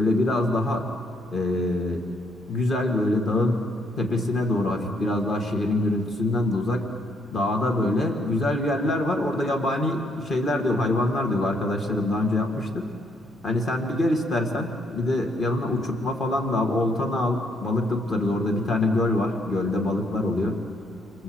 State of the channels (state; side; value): normal; both; correlation 0.71